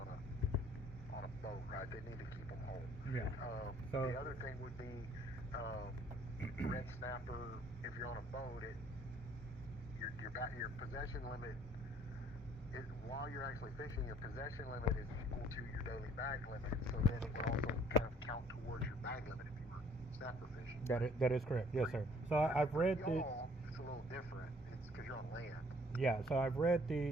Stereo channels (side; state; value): both; normal; correlation 0.59